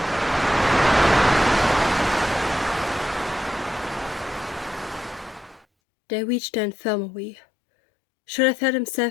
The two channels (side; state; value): right; drops out; at 5.7 s